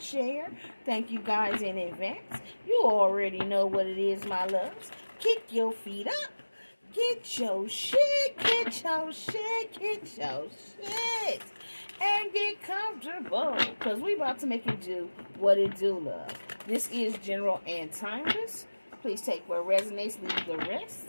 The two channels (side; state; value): both; inverted; correlation -1.00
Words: share. Thank you guys in advance. You already know what it is, my loves. Kick your feet up. Get your shit, get your shit, get your shit. And get comfortable, because we about to make it do what it do, love. This is general and timeless. Please take what resonates, leave the